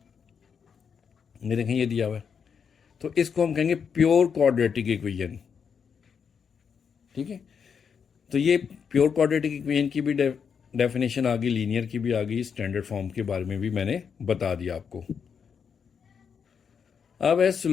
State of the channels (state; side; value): quieter; right; 6.7 dB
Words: ये देखें ये दिया हुआ है, तो इसको हम कहेंगे प्योर क्वाड्रेटिक इक्वेशन, ठीक है। तो ये प्योर क्वाड्रेटिक इक्वेशन की भी डेफिनेशन आ गई, लीनियर की भी आ गई, स्टैंडर्ड फॉर्म के बारे में भी मैंने बता दिया आपको। अब है